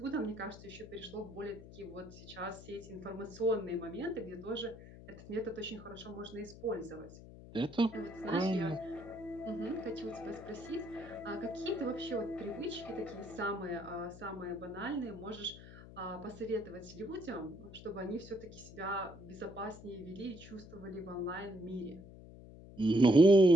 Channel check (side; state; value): left; noise; hum, 16 dB below the sound